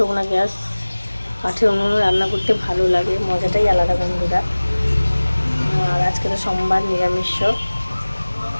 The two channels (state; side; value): inverted; both; correlation -1.00